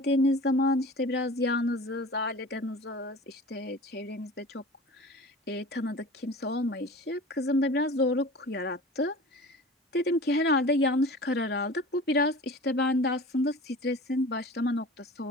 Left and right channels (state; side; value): normal; both; correlation 0.39